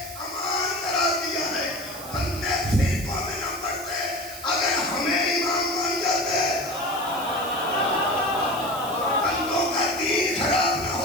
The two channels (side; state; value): right; noise; hiss, 13 dB below the sound